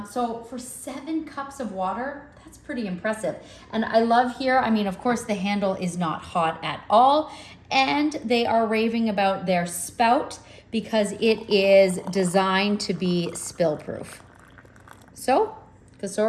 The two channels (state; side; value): identical; both; correlation 1.00